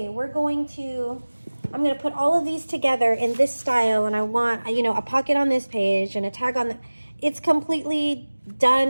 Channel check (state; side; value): inverted; both; correlation -1.00